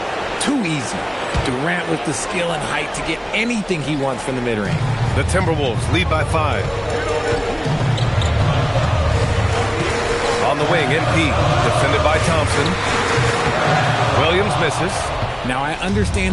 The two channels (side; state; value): both; identical; correlation 1.00